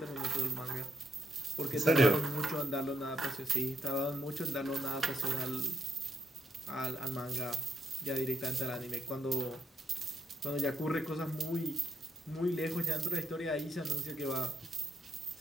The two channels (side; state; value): both; normal; correlation 0.80